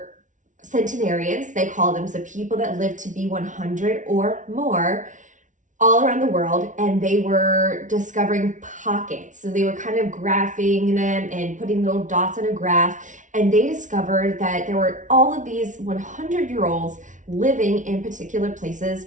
centenarians, they call them, so people that lived to be 100 or more all around the world, and they were discovering pockets. So they were kind of graphing them and putting little dots on a graph, and they discovered that there were all of these 100-year-olds living in particular places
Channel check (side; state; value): left; late; 0.37 ms